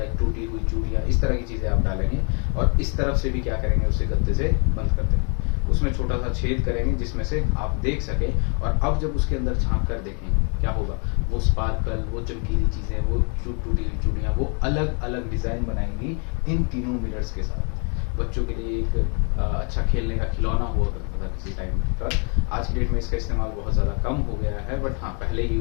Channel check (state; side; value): quieter; right; 38.1 dB